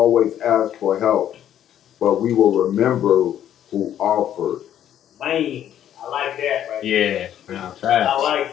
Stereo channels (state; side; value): quieter; right; 10.7 dB